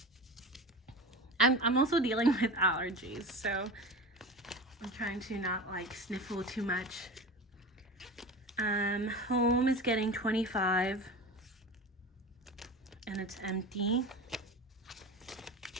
I'm also dealing with allergies, so I'm trying to not, like, sniffle too much. Home is getting 25, and it's empty.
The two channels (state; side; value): normal; both; correlation 0.31